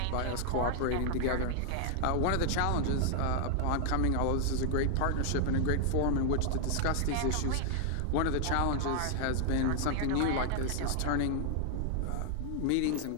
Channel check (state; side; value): different; both; correlation 0.00